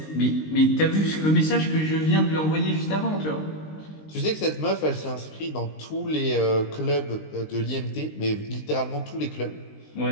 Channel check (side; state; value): right; late; 19 ms